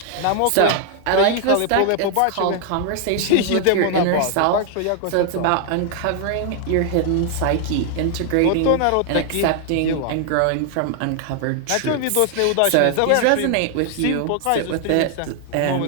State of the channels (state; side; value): different; both; correlation 0.00